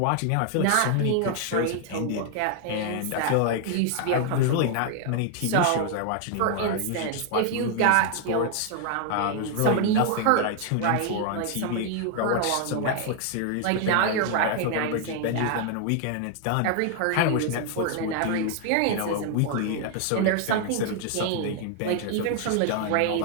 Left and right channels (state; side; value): different; both; correlation 0.00